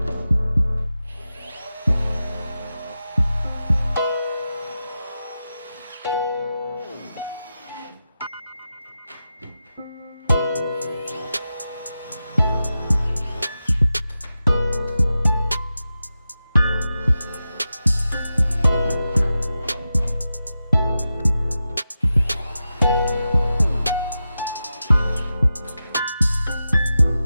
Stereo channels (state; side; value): inverted; both; correlation -0.91